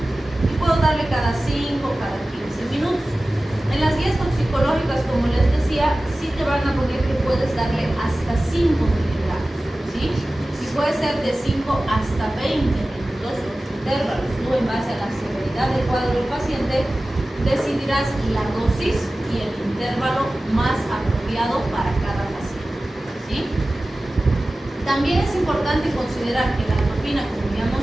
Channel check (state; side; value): normal; both; correlation 0.96